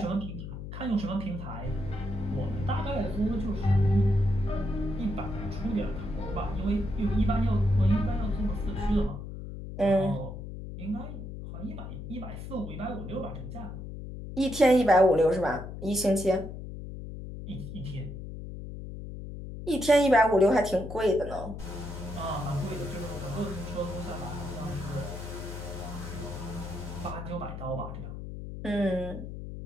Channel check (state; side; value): noise; left; hum, 9 dB below the sound